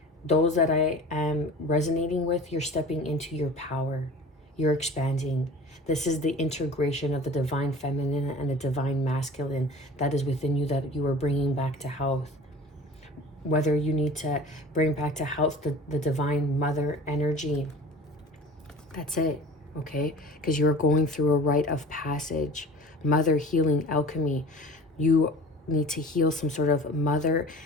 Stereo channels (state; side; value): normal; both; correlation 0.40